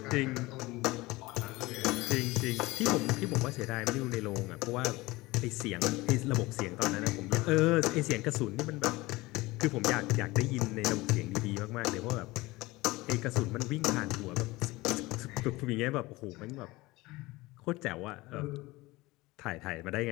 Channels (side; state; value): right; quieter; 20.7 dB